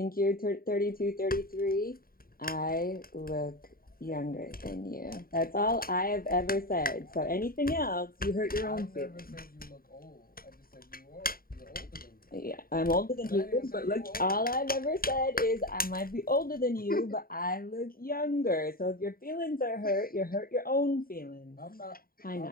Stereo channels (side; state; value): right; late; 0.43 ms